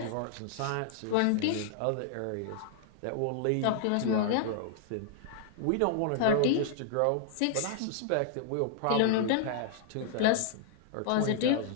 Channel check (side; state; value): both; different; correlation -0.01